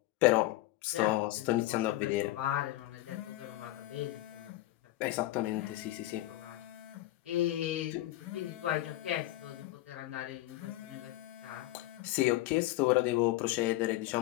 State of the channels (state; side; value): quieter; right; 16.6 dB